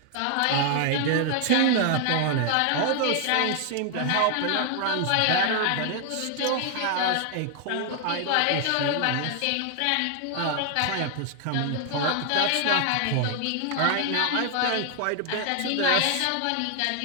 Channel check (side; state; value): both; different; correlation 0.00